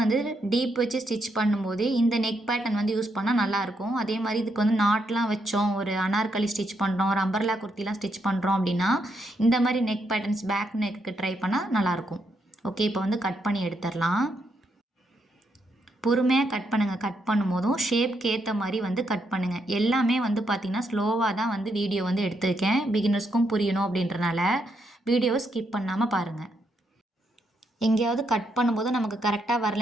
டீப் வச்சு ஸ்டிச் பண்ணும்போது இந்த நெக் பேட்டர்ன் வந்து யூஸ் பண்ணால் நல்லாயிருக்கும். அதே மாதிரி இதுக்கு வந்து நாட்லாம் வச்சோம், ஒரு அனார்கலி ஸ்டிச் பண்ணுறோம், ஒரு அம்பர்லா குர்த்திலாம் ஸ்டிச் பண்ணுறோம் அப்படின்னா இந்த மாதிரி neck patterns back neck try பண்ணால் நல்லாயிருக்கும். ஓகே, இப்போ வந்து கட் பண்ணி எடுத்துடலாம். பொறுமையாக கட் பண்ணுங்கள். கட் பண்ணும்போதும் ஷேப்க்கு ஏற்ற மாதிரி வந்து கட் பண்ணுங்கள். எல்லாமே வந்து பார்த்திங்கன்னா ஸ்லோவாக தான் வந்து வீடியோ வந்து எடுத்திருக்கேன். பிகினர்ஸ்க்கும் புரியணும் அப்படின்றனால வீடியோவை ஸ்கிப் பண்ணாமல் பாருங்கள். எங்கேயாவது கட் பண்ணும்போது நமக்கு கரெக்டாக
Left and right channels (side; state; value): both; normal; correlation 0.78